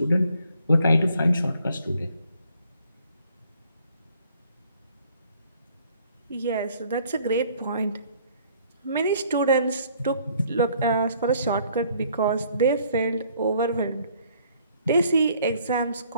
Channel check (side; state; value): both; inverted; correlation -0.62